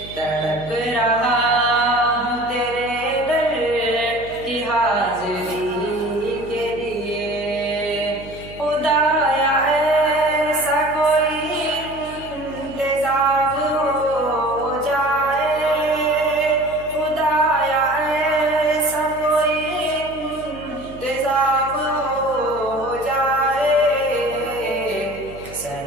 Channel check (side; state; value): right; noise; hum, 17 dB below the sound